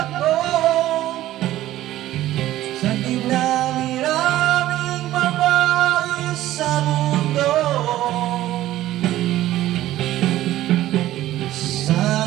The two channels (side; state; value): left; quieter; 14.5 dB